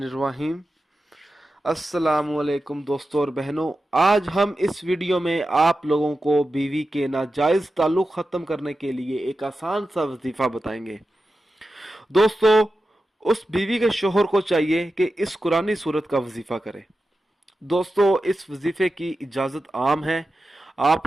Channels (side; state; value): both; normal; correlation 0.92